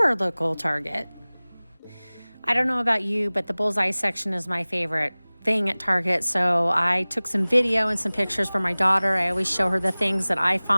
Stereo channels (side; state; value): both; inverted; correlation -1.00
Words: local Target. I don't know about you, but the Bullseye section is my favorite thing at Target, so I took some video and some pictures for my daughter. I always show her the things that I